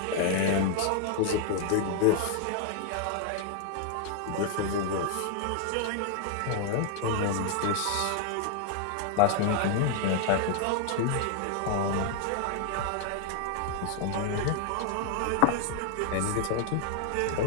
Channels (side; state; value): both; different; correlation 0.00